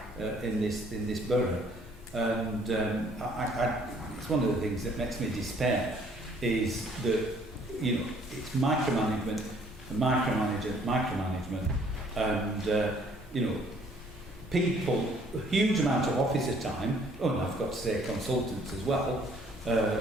in this borough. And it's one of the things that makes me despair is that, you know, it's micromanagement, and you know, people, a huge amount of officer time, and I've got to say consultants as well, are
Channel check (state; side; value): normal; both; correlation 0.61